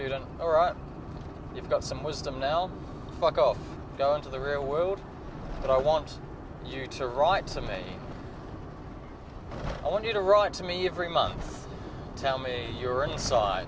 "Alright, you've got some wisdom now, fuck off, go into the real world, but I want you to write to me. I want you to write to me every month. Tell me your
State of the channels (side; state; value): both; identical; correlation 1.00